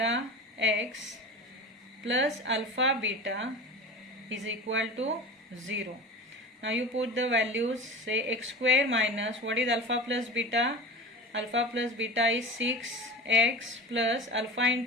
x plus alpha beta is equal to 0. Now you put the values, say x square minus, what is alpha plus beta? Alpha plus beta is 6x plus alpha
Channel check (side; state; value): both; normal; correlation 0.33